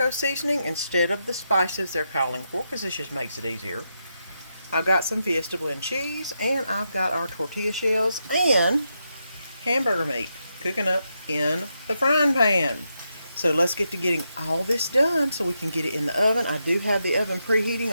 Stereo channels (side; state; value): both; inverted; correlation -0.84